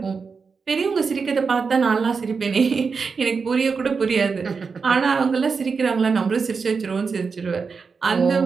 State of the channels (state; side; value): quieter; left; 5.2 dB